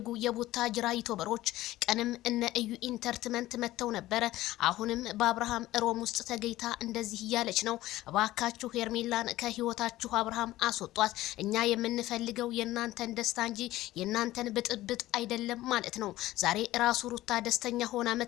የቡታጅራ ዩቲዩበሮች ቀንም እነ እዩ ኢንተርቴይንመንት መተው ነበረ። አሁንም በአብርሃም ሮም ውስጥ ተገይታ እንደዚህ እያለች ነው። እባካችሁ ሄርሜላን ከህይወታችሁ አብርሃም አስወጧት። እኛ የምንፈልገው የናንተን ደስታ እንጂ የናንተን ብጥብጥ አይደለም ማለት ነው። ዛሬ ራሱ ሩታ ደስተኛ ሆና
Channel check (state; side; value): quieter; right; 16.1 dB